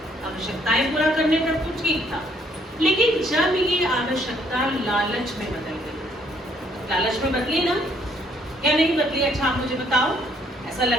आवश्यकताएं पूरा करने तक तो ठीक था, लेकिन जब ये आवश्यकता लालच में बदल गई, लालच में बदली ना, या नहीं बदली? अच्छा आप मुझे बताओ, ऐसा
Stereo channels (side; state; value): both; normal; correlation 0.66